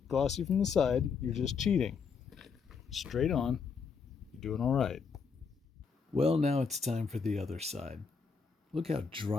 glossy from the side, you're just cheating. Straight on, you're doing all right. Well, now it's time for the other side. Look how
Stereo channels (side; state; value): right; quieter; 5.6 dB